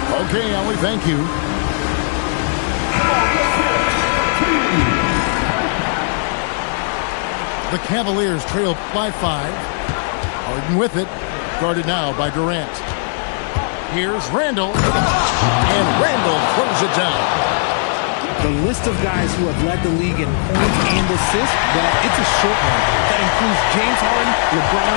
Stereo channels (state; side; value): silent; right; 68 dB below the other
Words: Okay, Allie, thank you. The Cavaliers trail by 5. Harden with it. Guarded now by Durant. Here's Randall. And Randall throws it down. The list of guys who have led the league in points and assists, well, it's a short one. That includes James Harden,